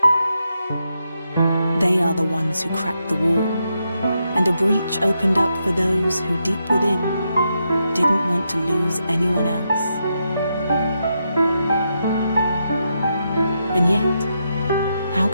They are the ones who cracked the wall, and a breach opened up for those who deep within didn't want to lose anyone else. And yet, how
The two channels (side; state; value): both; inverted; correlation -0.83